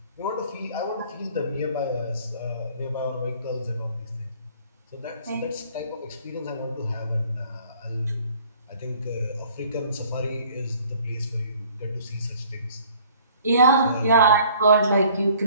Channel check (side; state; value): both; inverted; correlation -0.55